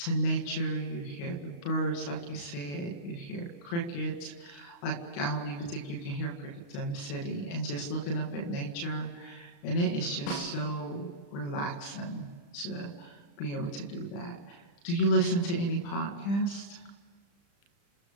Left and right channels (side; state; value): right; late; 35 ms